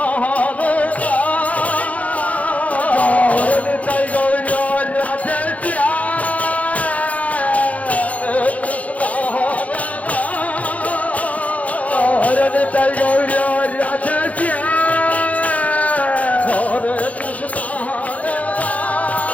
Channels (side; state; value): right; late; 0.068 ms